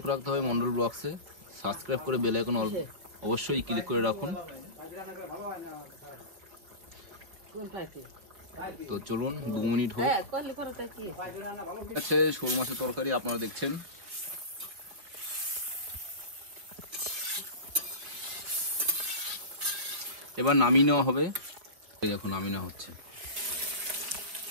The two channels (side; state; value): left; late; 4.6 ms